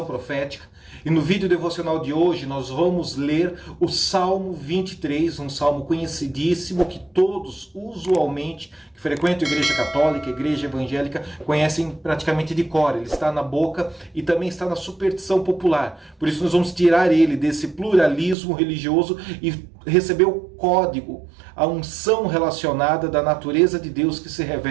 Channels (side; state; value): left; drops out; at 18.4 s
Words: Profética. E no vídeo devocional de hoje nós vamos ler o Salmo 23, um salmo conhecidíssimo que todos, usualmente, que frequentam a Igreja Católica, a Igreja Evangélica, conhecem praticamente de cor. Ele está na boca e também está na superstição popular. Por isso nós vamos tirar ele desse pluralismo religioso e receber o código, a unção relacionada da natureza de Deus que se